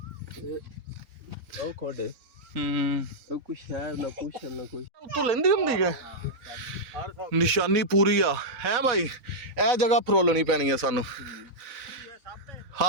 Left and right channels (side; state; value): left; late; 4.1 ms